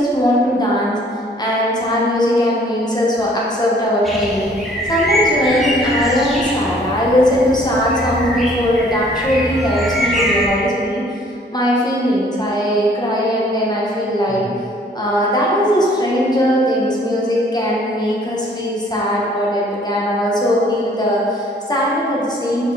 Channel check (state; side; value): normal; both; correlation 0.58